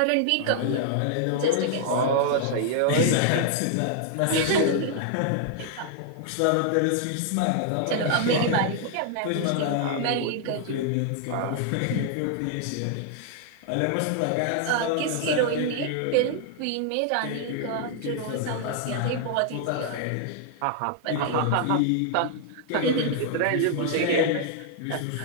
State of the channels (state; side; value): different; both; correlation 0.00